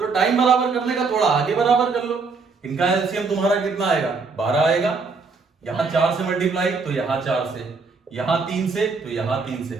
टाइम बराबर करने का थोड़ा आगे बराबर कर लो। इनका एलसीएम तुम्हारा कितना आएगा? 12 आएगा। यहां 4 से मल्टीप्लाई तो यहां 4 से, यहां 3 से तो यहां 3 से।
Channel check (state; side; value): quieter; left; 4.5 dB